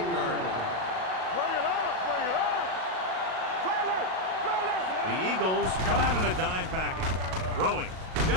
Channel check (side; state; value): left; late; 38 ms